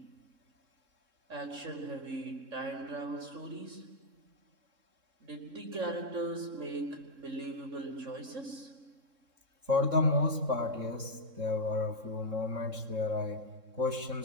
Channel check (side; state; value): left; late; 3.7 ms